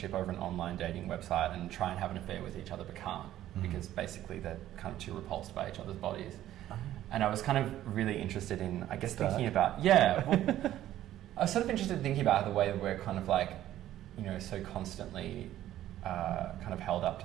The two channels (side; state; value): left; quieter; 13.0 dB